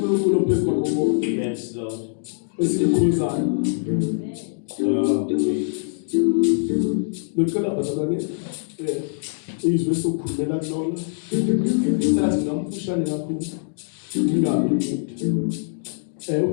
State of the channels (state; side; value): silent; right; digital silence